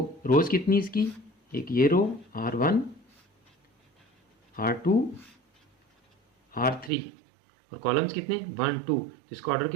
रोज कितनी इसकी? एक ये रो R1, R2, R3, और कॉलम्स कितने? 1 2। तो इसका ऑर्डर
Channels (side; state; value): left; drops out; at 6.9 s